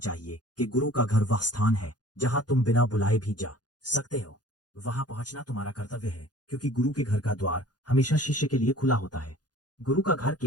कि गुरु का घर वह स्थान है जहाँ तुम बिना बुलाए भी जा सकते हो। वहां पहुंचना तुम्हारा कर्तव्य है, क्योंकि गुरु के घर का द्वार हमेशा शिष्य के लिए खुला होता है। गुरु का घर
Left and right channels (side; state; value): right; late; 0.69 ms